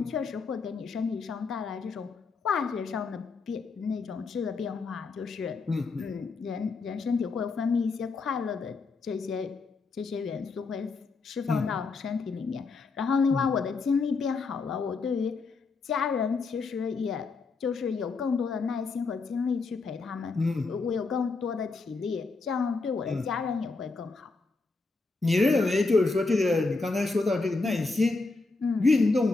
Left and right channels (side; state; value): right; quieter; 4.0 dB